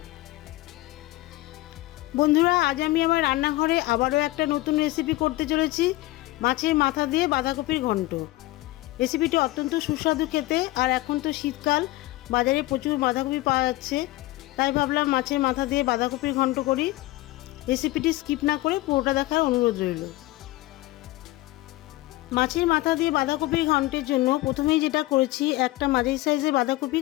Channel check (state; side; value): quieter; right; 18.7 dB